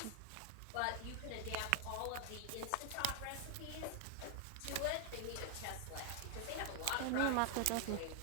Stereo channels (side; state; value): both; different; correlation 0.00